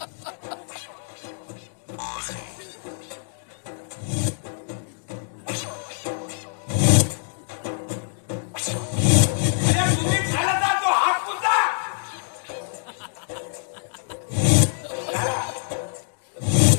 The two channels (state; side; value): silent; right; digital silence